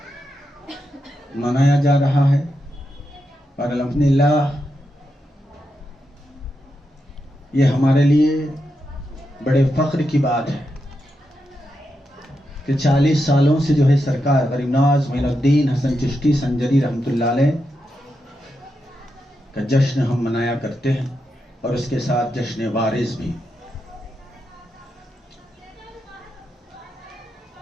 मनाया जा रहा है। और अल्हम्दुलिल्लाह ये हमारे लिए बड़े फख्र की बात है कि 40 सालों से जो है सरकार गरीब नवाज मोइनुद्दीन हसन चिश्ती संजरी रहमतुल्लाह अलैह का जश्न हम मनाया करते हैं, और उसके साथ जश्न वारिस भी।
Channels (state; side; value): normal; both; correlation 0.86